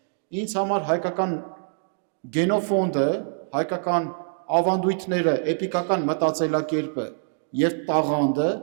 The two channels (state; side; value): silent; left; digital silence